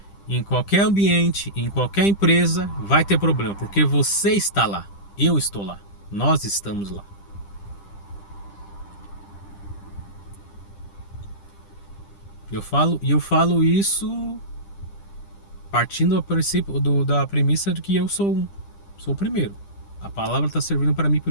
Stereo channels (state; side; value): late; right; 10 ms